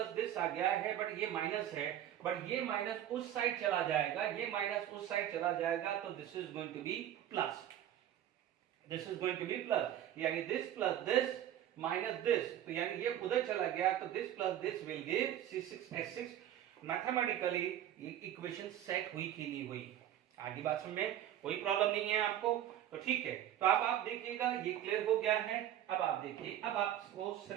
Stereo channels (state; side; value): quieter; left; 11.5 dB